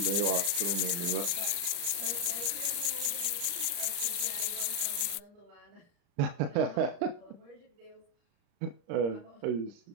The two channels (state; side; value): late; left; 33 ms